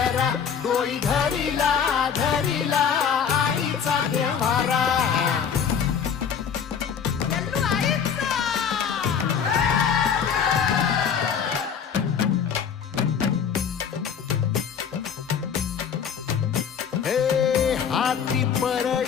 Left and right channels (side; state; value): right; quieter; 7.3 dB